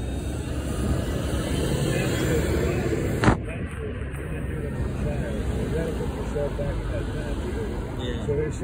Yeah. So they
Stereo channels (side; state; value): both; identical; correlation 1.00